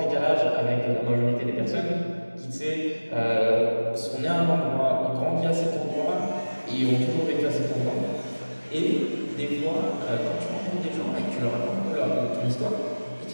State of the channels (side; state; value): both; inverted; correlation -1.00